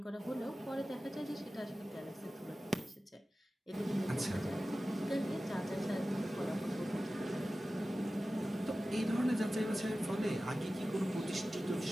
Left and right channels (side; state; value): both; normal; correlation 0.95